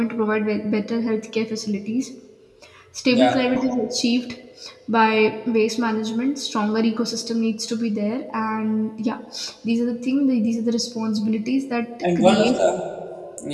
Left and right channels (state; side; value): identical; both; correlation 1.00